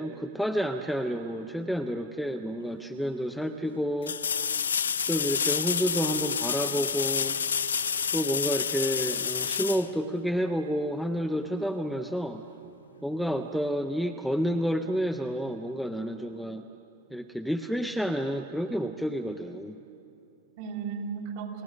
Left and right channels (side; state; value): both; normal; correlation 0.40